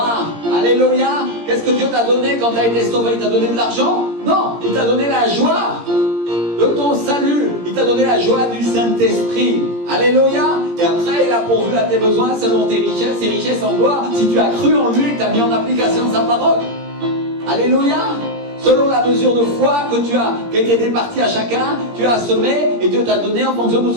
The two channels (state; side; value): late; left; 17 ms